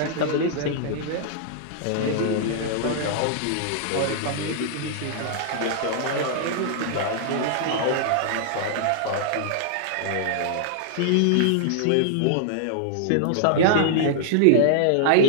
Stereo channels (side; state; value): both; different; correlation -0.01